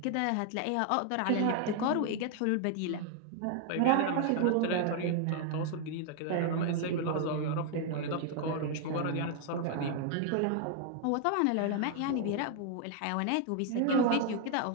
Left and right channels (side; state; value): both; different; correlation 0.00